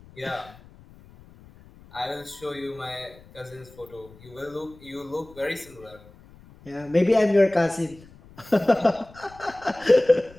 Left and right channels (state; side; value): noise; left; rumble, 23 dB below the sound